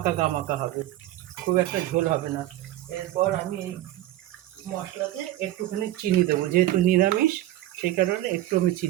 হবে, খুব একটা ঝোল হবে না। এরপর আমি এই মশলাতে একটুখানি চিনি দেবো, যেহেতু নিরামিষ সেই কারণে একটু আমি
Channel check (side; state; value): left; quieter; 14.7 dB